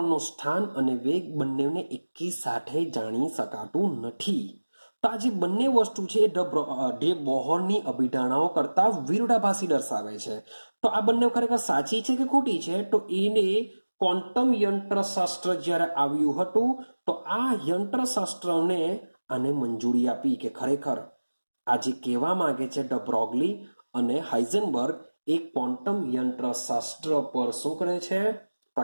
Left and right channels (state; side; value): inverted; both; correlation -1.00